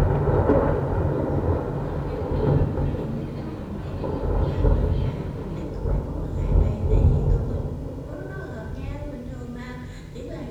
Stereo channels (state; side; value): identical; both; correlation 1.00